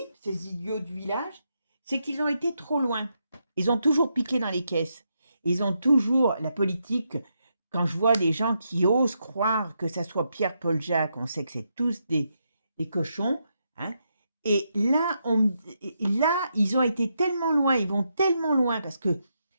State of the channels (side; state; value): both; inverted; correlation -0.82